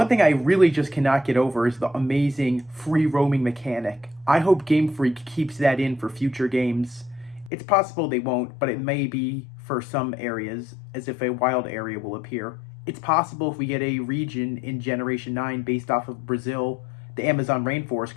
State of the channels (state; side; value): drops out; right; at 7.5 s